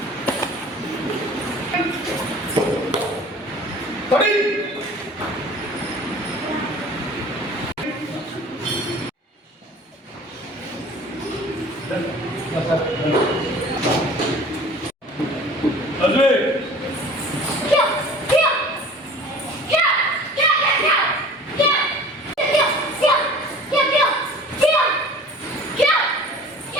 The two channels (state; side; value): normal; both; correlation 0.44